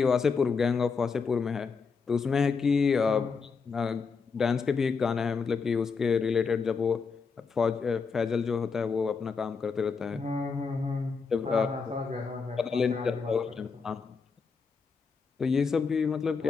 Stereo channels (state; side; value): quieter; right; 5.2 dB